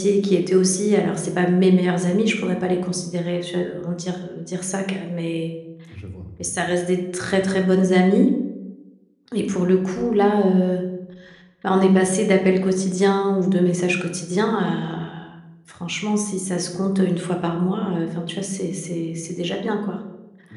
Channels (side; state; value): both; identical; correlation 1.00